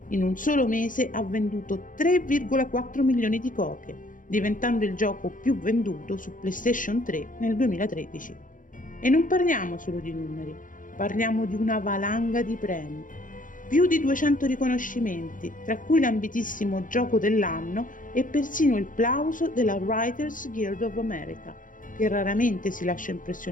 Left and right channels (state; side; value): late; right; 0.39 ms